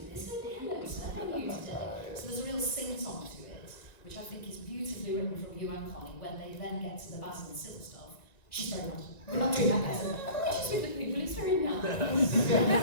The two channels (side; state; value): right; late; 1.9 ms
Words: this, don't they? Hello, sir, how are you today? So there's a real sing-song to it, which I think is beautifully written from you and Connie when they then get to the Basil and Sybil stuff. She's very nice. We're not doing that, Basil. She's with the people, it's very nice.